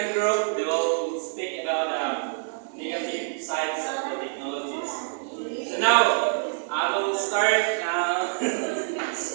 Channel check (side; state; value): left; silent; 61 dB below the other